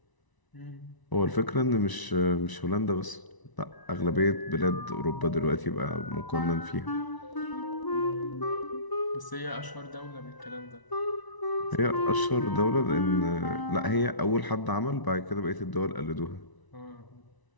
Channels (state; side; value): late; right; 1.0 ms